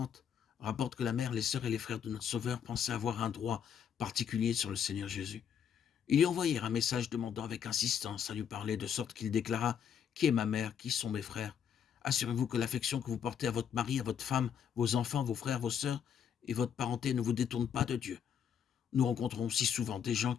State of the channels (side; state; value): right; quieter; 8.2 dB